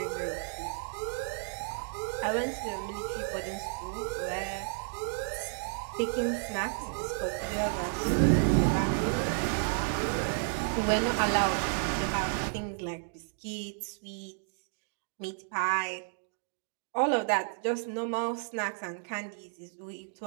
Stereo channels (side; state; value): left; silent; 56 dB below the other